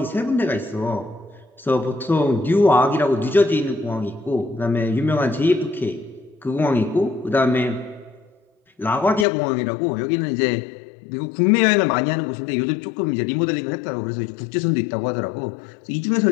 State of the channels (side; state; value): right; drops out; at 9.2 s